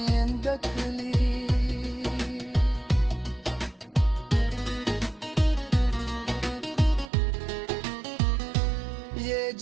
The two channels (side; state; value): left; drops out; at 7.1 s